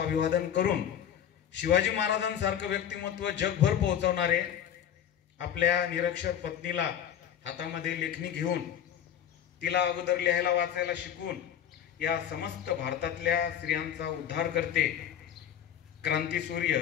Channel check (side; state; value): right; quieter; 9.6 dB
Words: करून शिवाजी महाराजांसारखं व्यक्तिमत्व जगभर पोहोचवणारे, आपल्या निरक्षर पत्नीला हातामध्ये लेखणी घेऊन तिला अगोदर लिहायला वाचायला शिकवून या समस्त भारतातल्या स्त्रियांचा उद्धार करते क्रांतीसूर्य